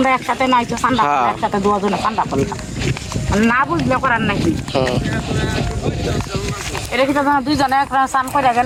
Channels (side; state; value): both; identical; correlation 1.00